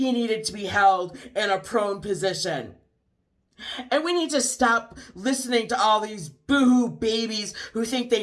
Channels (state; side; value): identical; both; correlation 1.00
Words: needed to be held in a prone position. And we need to stop listening to all these boohoo babies who think